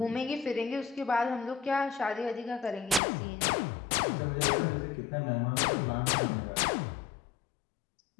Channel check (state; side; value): drops out; right; at 3.0 s